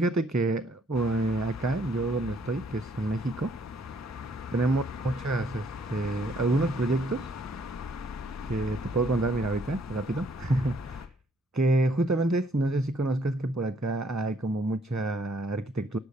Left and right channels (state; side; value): normal; both; correlation 0.66